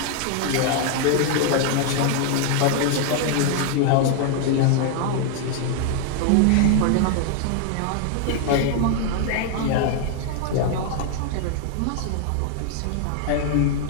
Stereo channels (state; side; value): different; both; correlation 0.00